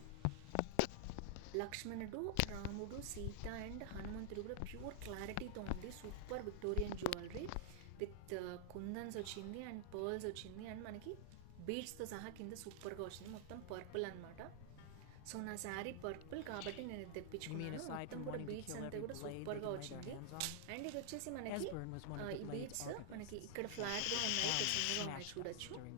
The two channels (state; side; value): different; both; correlation -0.01